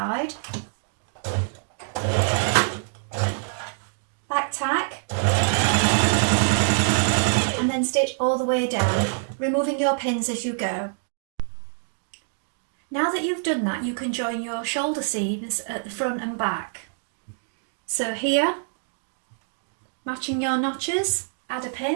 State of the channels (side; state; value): left; silent; digital silence